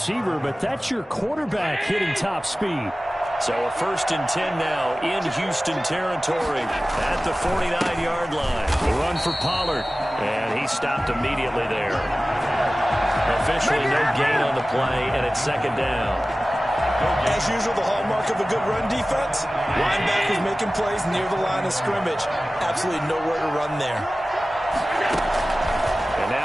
but that's your quarterback hitting top speed. So a 1st and 10 now in Houston territory at the 49-yard line. The run for Pollard, and he stopped immediately there. Officially no gain on the play, and it's 2nd down. As usual, the hallmark of a good run defense, linebackers making plays near the line of scrimmage. Absolutely nowhere to run there. And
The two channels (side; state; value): both; normal; correlation 0.97